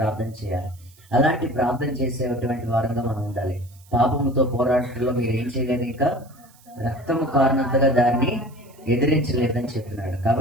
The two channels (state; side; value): noise; right; hiss, 28 dB below the sound